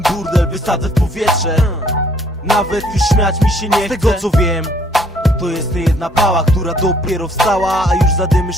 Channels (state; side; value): normal; both; correlation 0.64